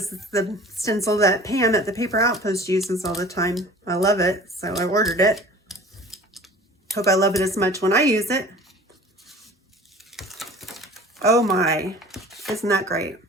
is the stencil that Pam at the Paper Outpost uses all the time. I love it, so I ordered it. Hope I love it as much when I use it. Oh my, isn't that great?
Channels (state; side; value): normal; both; correlation 0.44